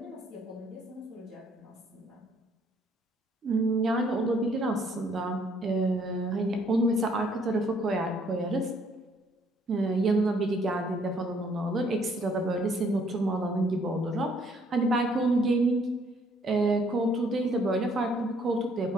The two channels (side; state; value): both; normal; correlation 0.65